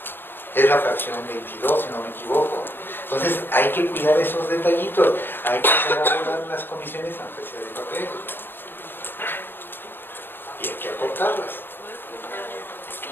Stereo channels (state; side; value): late; right; 0.10 ms